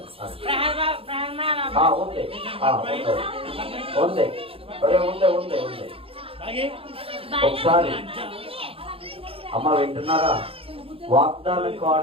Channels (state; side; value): late; left; 0.27 ms